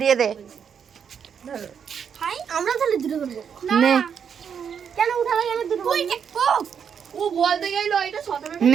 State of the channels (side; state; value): left; quieter; 7.4 dB